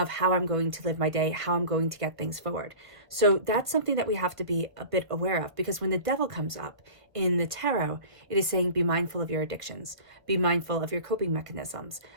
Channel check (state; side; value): late; left; 1.3 ms